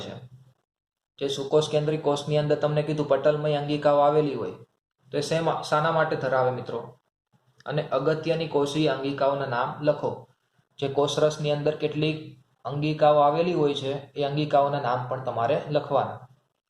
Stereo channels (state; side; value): identical; both; correlation 1.00